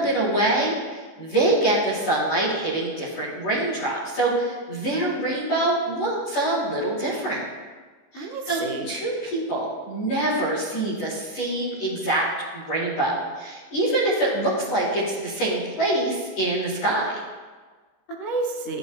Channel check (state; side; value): late; right; 19 ms